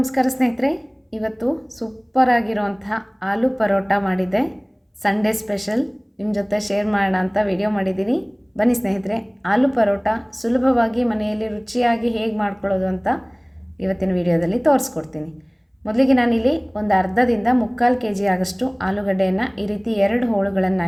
ಸ್ನೇಹಿತರೆ. ಇವತ್ತು ಸೂಪರ್ ಆಗಿರುವಂತಹ ಆಲೂ ಪರೋಟ ಮಾಡಿದ್ದೆ. ಸಂಡೇ ಸ್ಪೆಷಲ್ ನಿಮ್ಮ ಜೊತೆ ಶೇರ್ ಮಾಡೋಣ ಅಂತ ವಿಡಿಯೋ ಮಾಡಿದ್ದೀನಿ. ಬನ್ನಿ ಸ್ನೇಹಿತರೆ, ಆಲೂ ಪರೋಟ ಸುಲಭವಾಗಿ ಮನೆಯಲ್ಲಿ ರುಚಿಯಾಗಿ ಹೇಗೆ ಮಾಡ್ಕೊಳ್ಳೋದು ಅಂತ ಇವತ್ತಿನ ವಿಡಿಯೋದಲ್ಲಿ ತೋರಿಸ್ಕೊಡ್ತೀನಿ. ಮೊದಲಿಗೆ ನಾನಿಲ್ಲಿ ಒಂದು ಅರ್ಧದಿಂದ 3/4 kg ಆಗಷ್ಟು ಆಲೂಗಡ್ಡೆಯನ್ನು ಈ ರೀತಿ 2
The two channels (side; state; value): both; identical; correlation 1.00